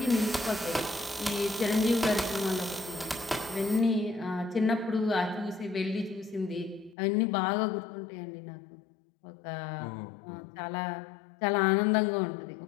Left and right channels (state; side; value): drops out; right; at 7.0 s